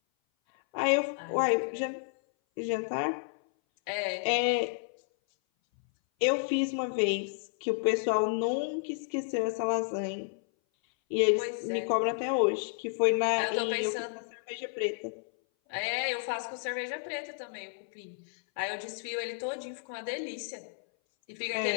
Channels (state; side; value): silent; right; 57 dB below the other